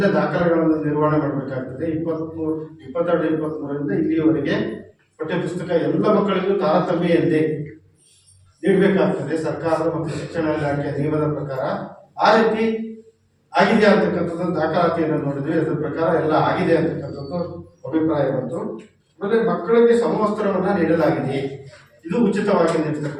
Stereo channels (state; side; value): identical; both; correlation 1.00